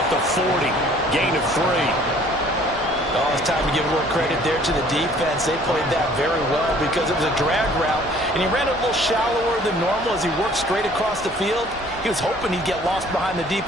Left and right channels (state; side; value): normal; both; correlation 0.55